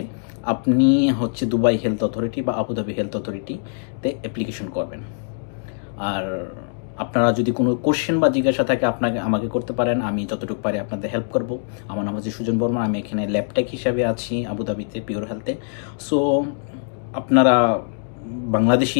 আপনি হচ্ছে দুবাই হেলথ অথরিটি বা আবুধাবি হেলথ অথরিটিতে অ্যাপ্লিকেশন করবেন। আর আপনারা যদি কোনো কোশ্চেন বা জিজ্ঞাসা থাকে আমাকে করতে পারেন, আমি যতটুকু পারি আপনাদের হেল্প করব। আমার নাম হচ্ছে সুজন বর্মা, আমি এখানে ল্যাবটেক হিসাবে আছি আবুধাবিতে, পিওর হেলথে। সো আপনারা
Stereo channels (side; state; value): right; silent; digital silence